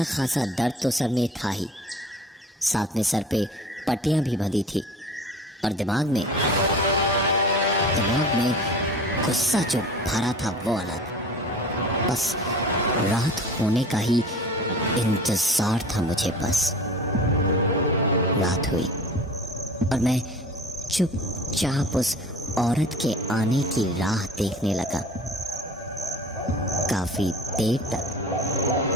खासा दर्द तो सर में था ही, साथ में सर पे पट्टियां भी बंधी थी और दिमाग में गुस्सा जो भरा था वो अलग। बस रात होने का ही इंतजार था मुझे। बस रात हुई और मैं चुपचाप उस औरत के आने की राह देखने लगा। काफी देर तक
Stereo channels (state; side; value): normal; both; correlation 0.41